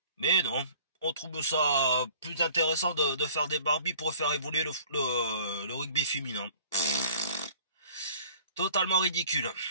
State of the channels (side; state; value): both; inverted; correlation -0.50